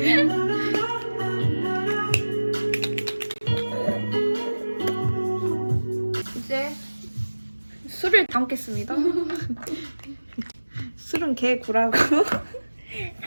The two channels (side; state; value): both; inverted; correlation -1.00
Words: 이제 술을 담겠습니다. 술은 개구라고.